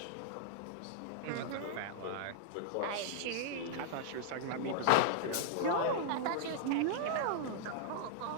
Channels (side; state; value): both; different; correlation -0.01